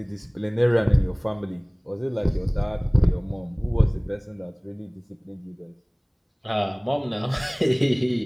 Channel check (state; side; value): identical; both; correlation 1.00